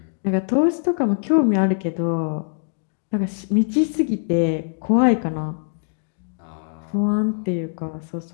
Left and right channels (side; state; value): right; silent; digital silence